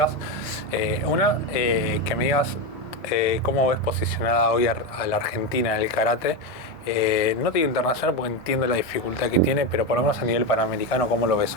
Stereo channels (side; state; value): both; normal; correlation 0.13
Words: Una, que me digas cómo ves posicionada hoy a la Argentina en el karate. No te digo internacional porque entiendo la dificultad que tiene, pero por lo menos a nivel panamericano, ¿cómo lo ves